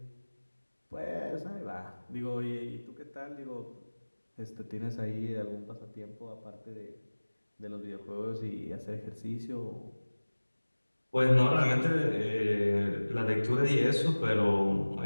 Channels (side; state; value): both; inverted; correlation -1.00